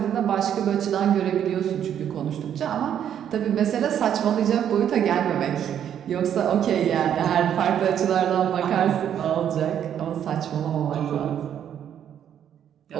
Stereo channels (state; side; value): quieter; left; 9.5 dB